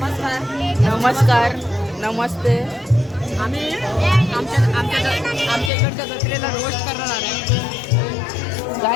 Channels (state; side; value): drops out; right; at 5.7 s